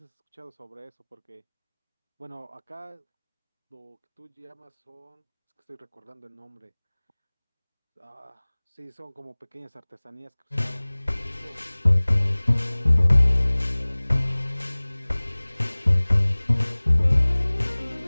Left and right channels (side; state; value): both; inverted; correlation -1.00